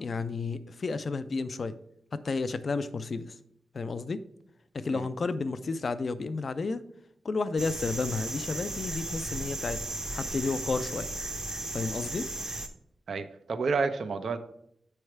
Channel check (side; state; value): both; normal; correlation 0.83